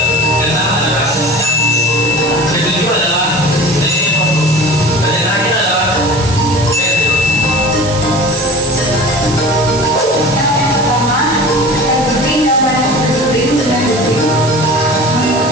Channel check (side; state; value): right; noise; hiss, 10 dB below the sound